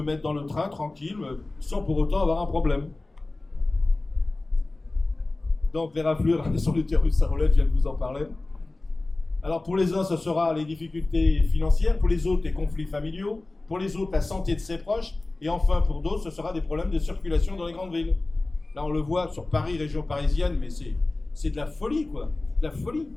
mettre dans le train tranquille, sans pour autant avoir un problème. Donc les raflures sur l'utérus à roulette, je viens de vous en parler. Alors pour les uns, ce sera les difficultés financières, pour les autres, les conflits familiaux, pour les autres, la santé de ses proches, et enfin pour d'autres, ce sera des problèmes de circulation dans les grandes villes. Là, on le voit sur Paris, région parisienne, mais c'est de la folie, quoi. De la folie.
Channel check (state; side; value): quieter; right; 3.0 dB